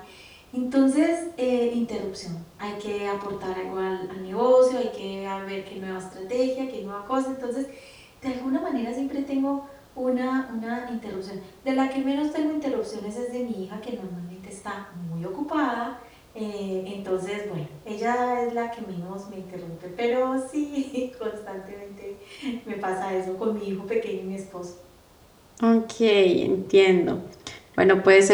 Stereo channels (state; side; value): identical; both; correlation 1.00